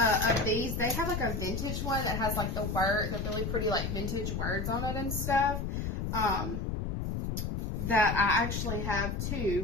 these. They have like a vintage one that has like the really pretty like vintage words on it and stuff. That I actually have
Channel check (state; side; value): noise; left; rumble, 2 dB below the sound